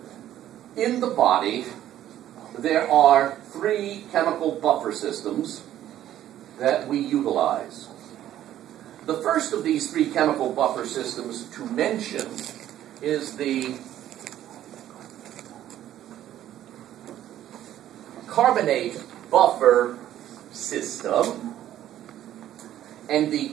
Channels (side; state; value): left; quieter; 12.2 dB